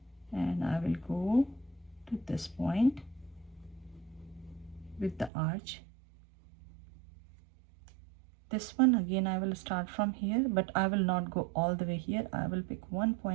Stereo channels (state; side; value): drops out; left; at 5.3 s